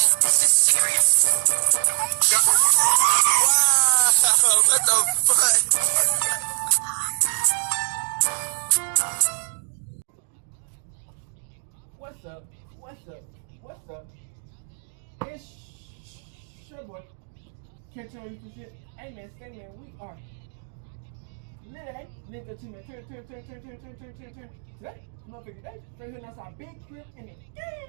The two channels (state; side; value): silent; left; digital silence